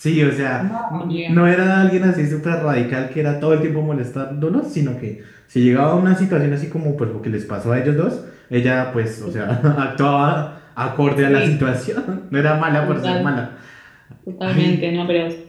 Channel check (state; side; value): identical; both; correlation 1.00